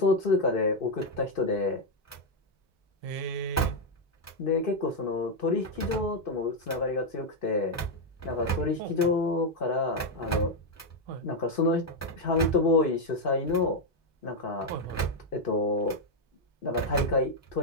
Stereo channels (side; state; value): both; normal; correlation 0.02